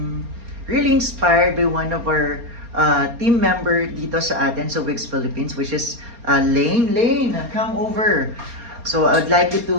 really inspired by one of our team member dito sa atin sa Wigs Philippines, which is Lane. Lane, come over. So I would like you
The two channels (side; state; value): left; late; 4.2 ms